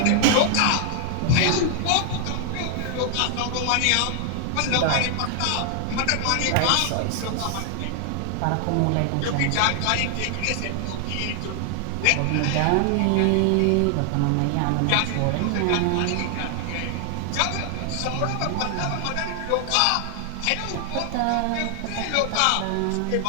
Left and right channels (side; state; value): both; different; correlation 0.00